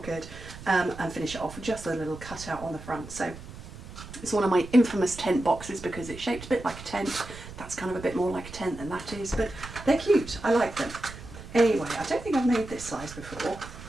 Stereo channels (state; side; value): noise; right; rumble, 14 dB below the sound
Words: good, and finish it off with just a little cutout on the front. So it's one of my infamous tent boxes because it's shaped a bit like a tent. That's kind of a bit more like a tent than that is, but they're cute. I like them. Anyway, I don't think I've made this size before.